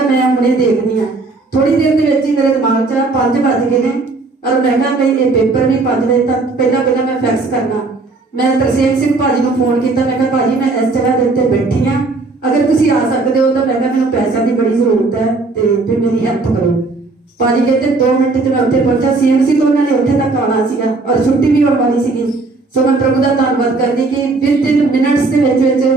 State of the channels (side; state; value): left; quieter; 3.6 dB